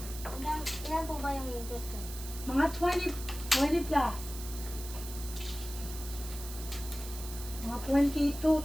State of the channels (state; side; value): noise; right; hiss, 11 dB below the sound